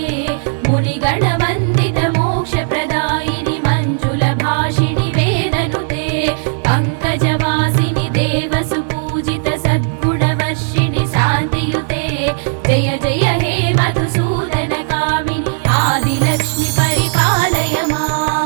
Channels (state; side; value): silent; left; 69 dB below the other